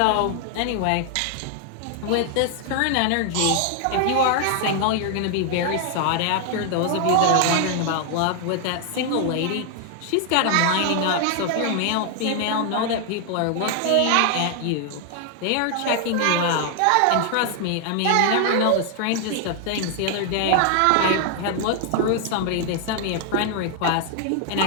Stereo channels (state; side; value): different; both; correlation 0.00